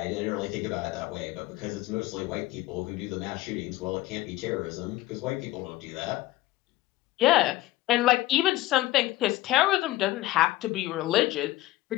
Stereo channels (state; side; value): quieter; right; 16.9 dB